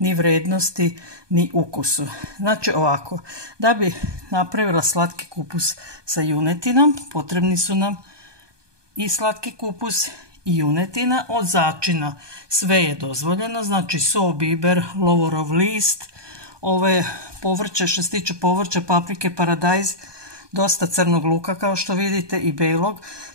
vrednosti ni ukusu. Znači ovako, da bi napravila slatki kupus sa junetinom potrebni su nam i slatki kupus i junetina. Od začina sve je dozvoljeno, znači so, biber, lovorov list, ove povrće, što se tiče povrća, paprike, paradajz, dosta crnog luka kao što vidite i belog.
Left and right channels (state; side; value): late; left; 1.2 ms